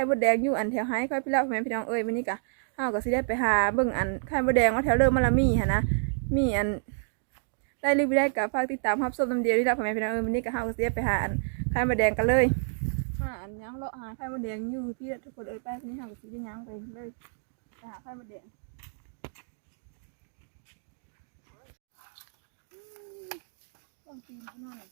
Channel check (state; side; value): silent; left; digital silence